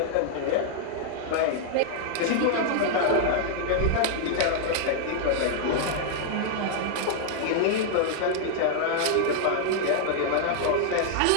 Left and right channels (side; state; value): both; different; correlation -0.01